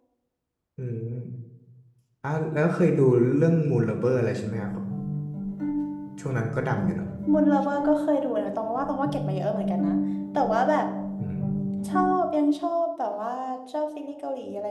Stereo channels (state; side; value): identical; both; correlation 1.00